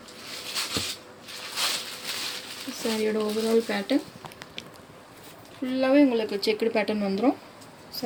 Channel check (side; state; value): both; identical; correlation 1.00